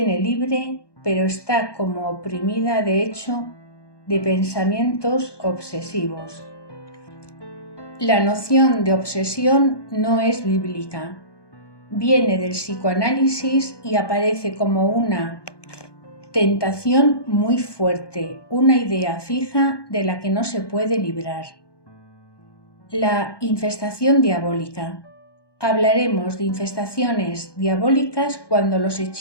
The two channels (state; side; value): late; right; 1.2 ms